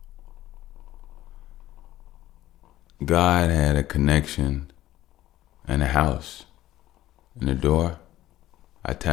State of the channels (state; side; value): quieter; right; 14.6 dB